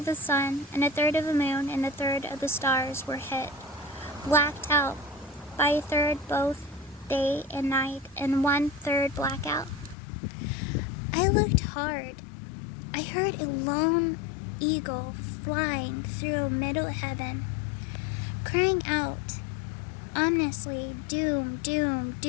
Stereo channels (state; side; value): drops out; right; at 10.0 s